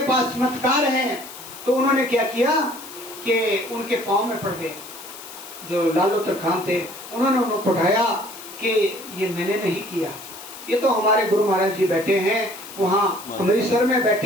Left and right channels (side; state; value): left; noise; hiss, 15 dB below the sound